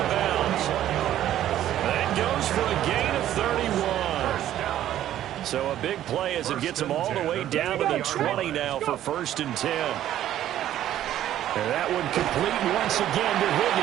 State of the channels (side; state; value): left; quieter; 12.2 dB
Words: bounds. That goes for a gain of 31. So a big play as it gets him all the way down to the 20 now for first and 10. And that one complete once again to